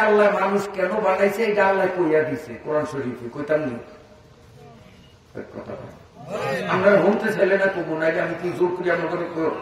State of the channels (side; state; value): both; identical; correlation 1.00